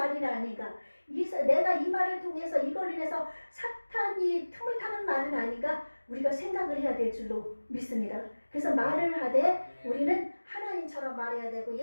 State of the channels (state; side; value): inverted; both; correlation -1.00